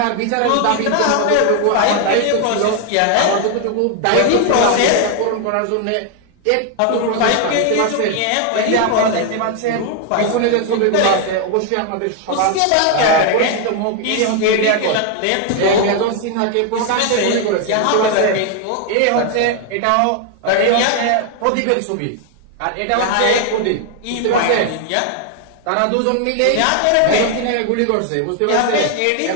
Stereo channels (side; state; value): both; different; correlation 0.01